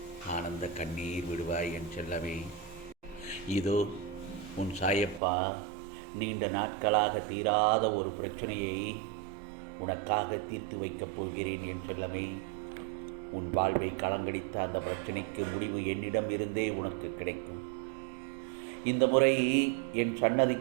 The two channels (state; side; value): drops out; left; at 5.2 s